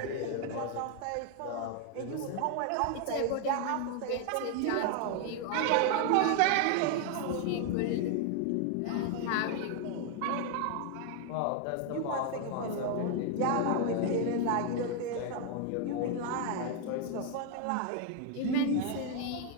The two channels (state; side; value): different; both; correlation 0.00